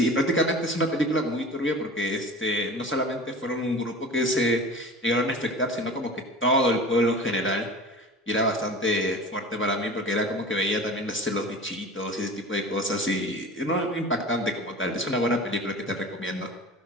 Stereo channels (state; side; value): normal; both; correlation 0.37